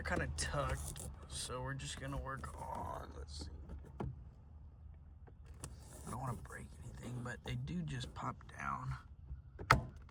kind of tucked. So we're just going to work on, let's see. I don't want to break anything, but they do just pop down.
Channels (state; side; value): identical; both; correlation 1.00